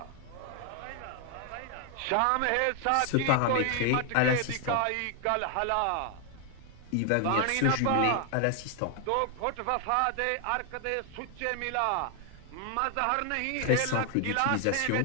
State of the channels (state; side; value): different; both; correlation 0.00